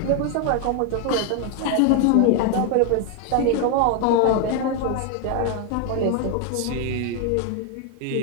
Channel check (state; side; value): different; both; correlation 0.01